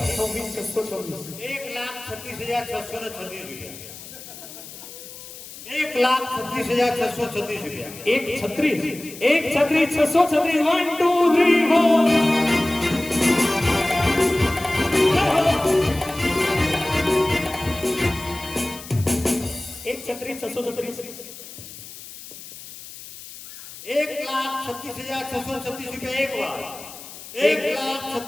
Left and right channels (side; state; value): left; noise; hiss, 15 dB below the sound